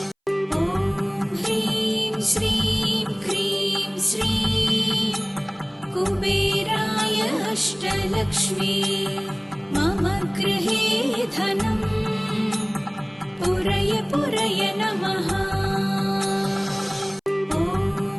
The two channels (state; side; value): identical; both; correlation 1.00